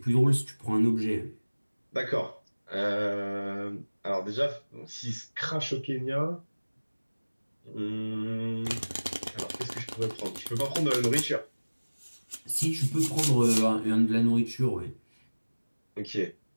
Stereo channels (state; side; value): inverted; both; correlation -1.00